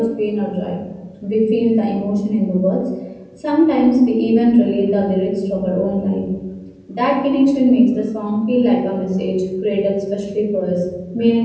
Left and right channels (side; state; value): both; identical; correlation 1.00